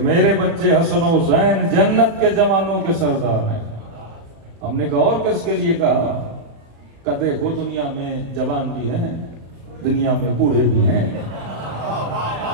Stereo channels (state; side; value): late; left; 35 ms